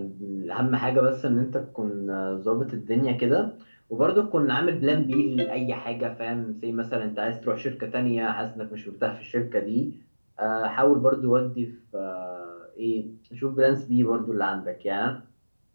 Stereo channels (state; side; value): inverted; both; correlation -1.00